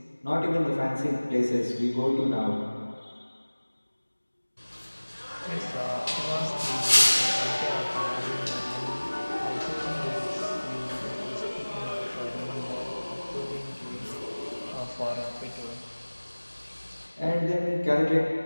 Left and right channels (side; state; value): both; inverted; correlation -1.00